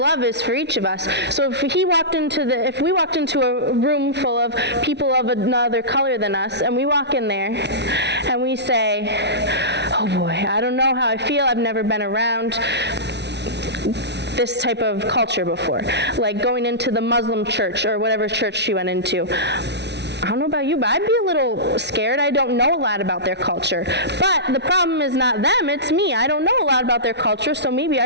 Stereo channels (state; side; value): late; left; 0.50 ms